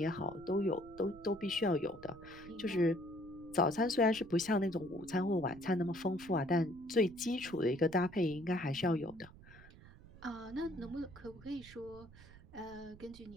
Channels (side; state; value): right; noise; rumble, 20 dB below the sound